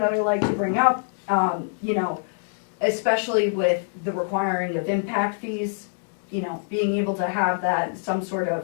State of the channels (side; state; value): right; silent; digital silence